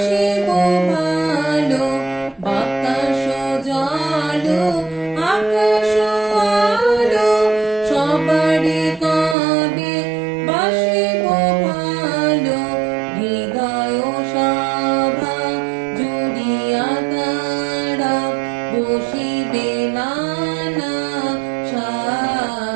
ভালো। বাতাস জল আকাশ আলো সবারই কবে বাসিব ভালো। হৃদয় সভা জুড়িয়া তারা বসিবে নানা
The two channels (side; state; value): left; drops out; at 9.3 s